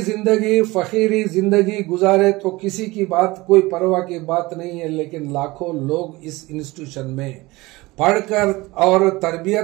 जिंदगी फकीरी जिंदगी गुजारे तो किसी की बात कोई परवाह की बात नहीं है, लेकिन लाखों लोग इस इंस्टीट्यूशन में पढ़कर और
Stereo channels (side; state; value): left; quieter; 21.2 dB